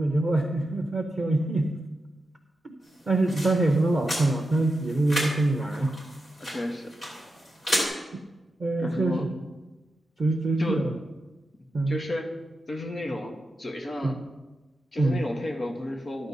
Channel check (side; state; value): both; normal; correlation 0.89